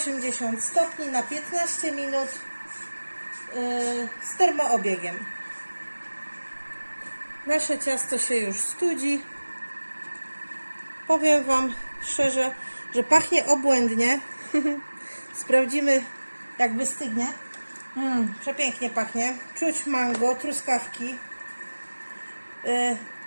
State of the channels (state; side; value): inverted; both; correlation -1.00